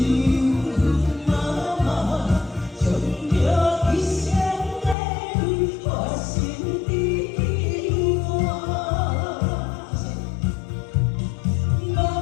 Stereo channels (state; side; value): drops out; right; at 5.0 s